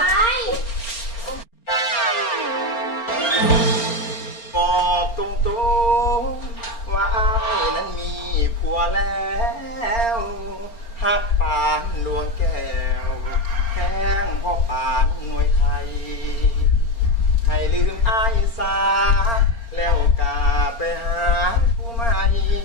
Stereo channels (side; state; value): right; late; 4.3 ms